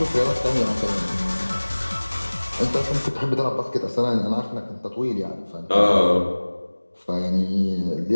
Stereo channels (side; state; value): both; inverted; correlation -1.00